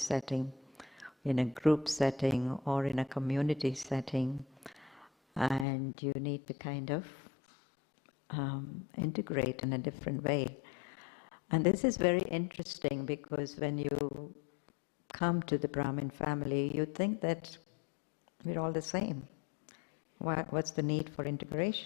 in a group setting, or in a community setting, and you need to kind of integrate in a different way. And this is very interesting because when you come to the Brahmin family, you think that we're all the same. What's the need for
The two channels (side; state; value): right; drops out; at 5.7 s